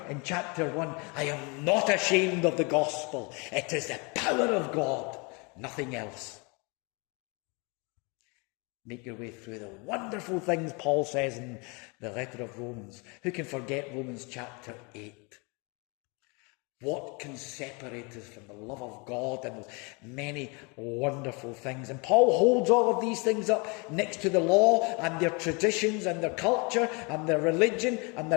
in chapter 1, I am not ashamed of the gospel. It is the power of God, nothing else. Make your way through the wonderful things Paul says in the letter of Romans. Who can forget Romans chapter 8? What can separate us from the love of God and many wonderful things? And Paul holds all of these things up next to the law and their traditions and their culture and their religion and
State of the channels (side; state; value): right; quieter; 30.8 dB